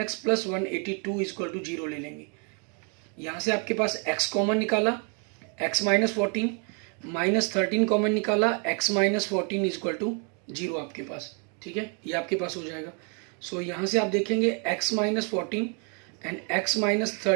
plus 182 is equal to 0 ले लेंगे। यहाँ से आपके पास x कॉमन निकाला, x माइनस 14 माइनस 13 कॉमन निकाला, x माइनस 14 इजक्वल टू 0 आपके पास, ठीक है, ये आपके पास हो जाएगा। सो यहाँ से आप देखेंगे x minus 14 and x minus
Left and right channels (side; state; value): left; quieter; 38.3 dB